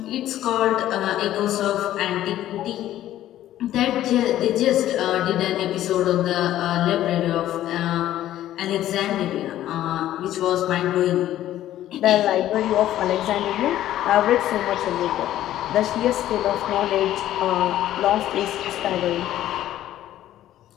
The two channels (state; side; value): quieter; right; 13.0 dB